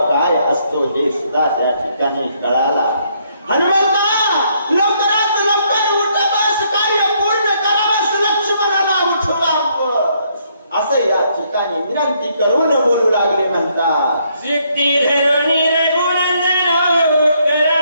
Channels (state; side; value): inverted; both; correlation -0.71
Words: काय असतो हे सुद्धा त्या ठिकाणी कळाला. हनुमंता, लवकरात लवकर उठवास, कार्य पूर्ण करावंस, लक्ष्मणाला उठवावंस असं या ठिकाणी विनंती करून बोलू लागले म्हणतात. सिद्धी धरुणी रघुनंदनो,